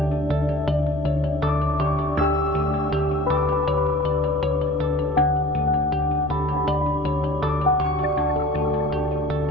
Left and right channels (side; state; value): left; noise; rumble, 17 dB below the sound